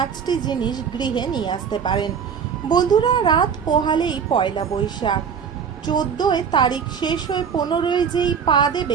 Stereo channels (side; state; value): left; quieter; 7.0 dB